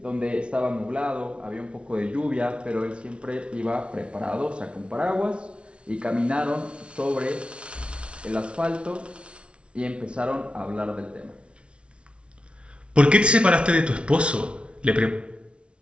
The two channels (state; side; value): late; left; 0.059 ms